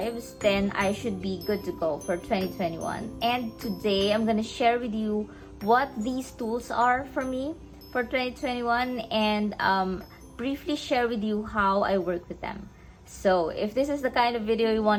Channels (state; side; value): identical; both; correlation 1.00